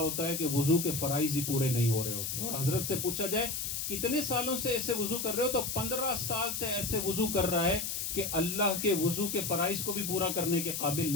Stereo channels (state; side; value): noise; left; hiss, 3 dB below the sound